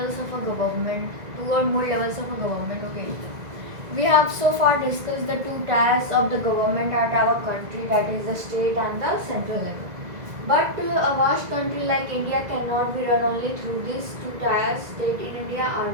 of a government, two or more levels of a government. Okay. We have so far discussed the two tiers of the government at our country, that is the state and the central level. But a vast country like India cannot be run only through these two tiers. State in India are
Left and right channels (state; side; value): late; left; 2.0 ms